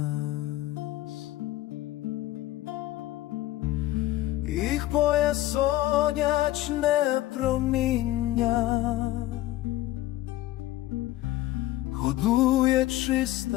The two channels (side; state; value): right; quieter; 16.0 dB